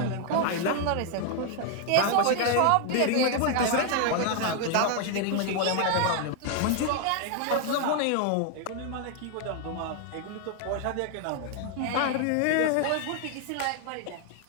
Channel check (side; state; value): both; different; correlation 0.00